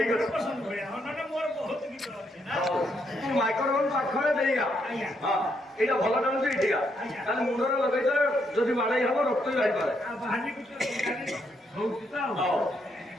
ଅଛି। ପସନ୍ଦ ଭଳିଆ। ହଁ ନହେଲେ ମୋର ବହୁତ ଗୀତ ଅଛି ନା। ତୁ ମାଇକ୍ରୋଫୋନ ପାଖରେ ଦେଇଗା। ଆଜ୍ଞା। ହଁ ଏଇଟା ଭଲ ଚାଲୁଛି ଏଠିକା। ଆଜ୍ଞା। ତାହେଲେ ମୁଣ୍ଡରେ ଲଗେଇଦେଲେ ଯଦି ବାଡ଼େଇ ହବ ରକ୍ତ ବି ବାହାରିପାରେ। ଆଉ ବାହାରି ଗୋଟେ ହଉଛି ତ ଆଉ। ହଉ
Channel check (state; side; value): normal; both; correlation 0.76